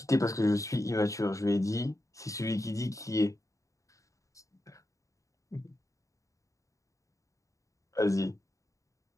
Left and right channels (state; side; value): late; right; 0.16 ms